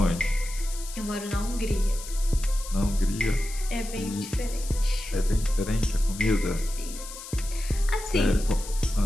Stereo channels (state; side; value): noise; left; hiss, 12 dB below the sound